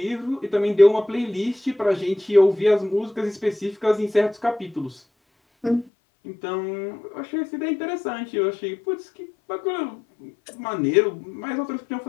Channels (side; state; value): right; drops out; at 5.9 s